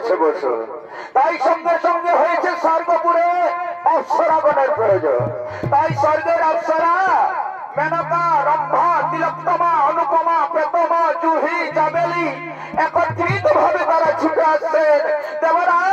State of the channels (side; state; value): both; identical; correlation 1.00